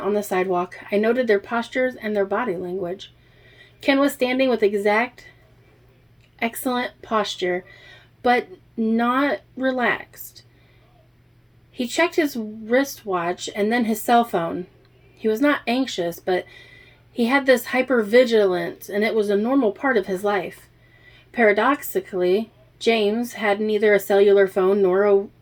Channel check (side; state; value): both; identical; correlation 1.00